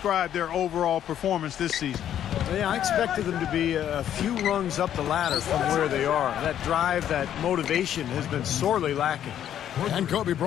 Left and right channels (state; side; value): quieter; right; 10.5 dB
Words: their overall performance this season. Yeah, I expected them to be a few rungs up the ladder from where they are. That drive, that motivation has been sorely lacking. And Kobe